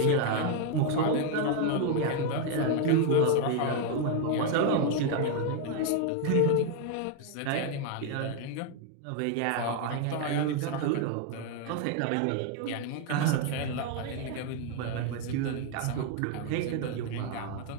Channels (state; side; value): different; both; correlation 0.00